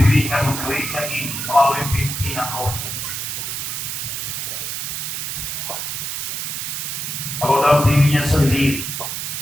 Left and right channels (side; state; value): right; noise; hiss, 4 dB below the sound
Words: gereja ini melalui pimpinan Roh Kudus. Kalau dalam dirinya sendiri